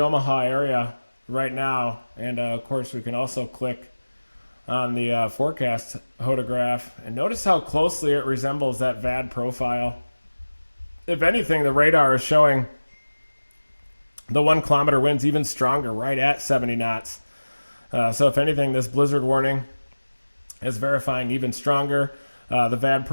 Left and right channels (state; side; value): inverted; both; correlation -1.00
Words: area right now. And of course we can also click on the forecast hodograph and notice how closely it resembles that VAD profile. If anything, the radar is showing the 1 kilometer winds even stronger, right at 70 knots. So if anything, this blizzard warning is verifying even stronger. The VAD